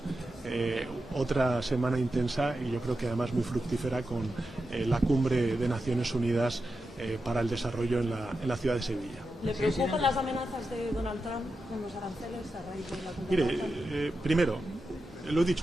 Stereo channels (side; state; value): both; normal; correlation 0.90